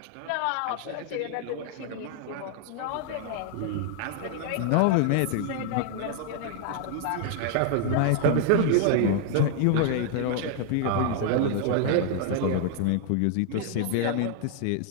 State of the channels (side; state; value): both; different; correlation 0.00